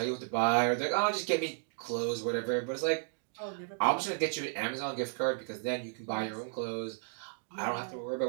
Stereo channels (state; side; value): silent; left; digital silence